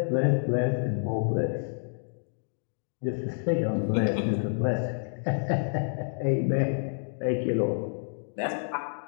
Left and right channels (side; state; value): right; silent; digital silence